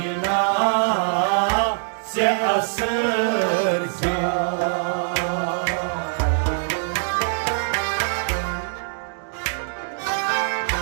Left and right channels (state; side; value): silent; left; digital silence